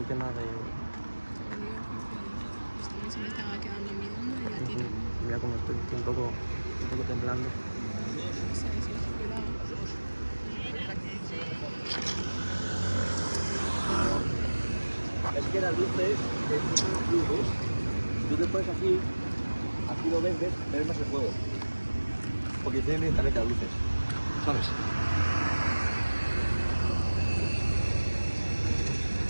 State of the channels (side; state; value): both; inverted; correlation -1.00